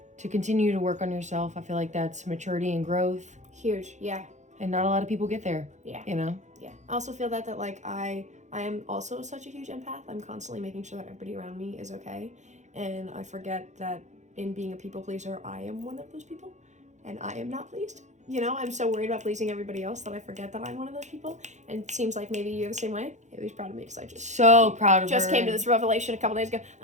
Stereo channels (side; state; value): left; late; 0.34 ms